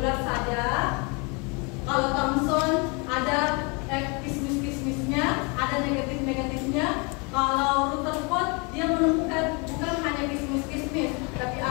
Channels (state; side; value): quieter; right; 31.4 dB